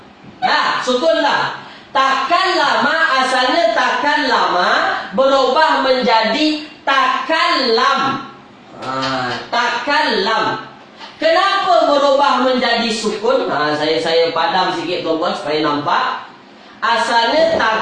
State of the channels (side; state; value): both; identical; correlation 1.00